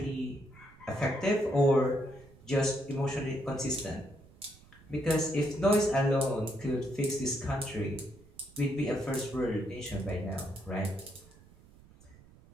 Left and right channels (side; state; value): right; noise; rumble, 24 dB below the sound